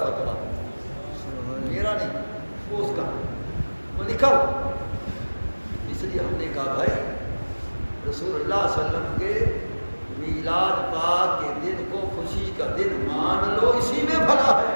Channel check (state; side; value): inverted; both; correlation -1.00